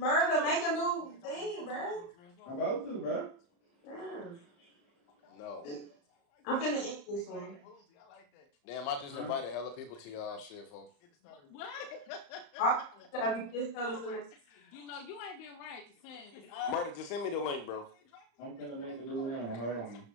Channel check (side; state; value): right; late; 35 ms